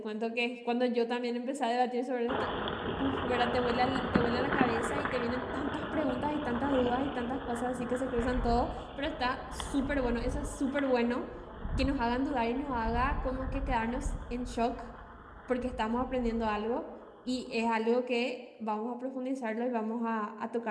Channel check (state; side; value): identical; both; correlation 1.00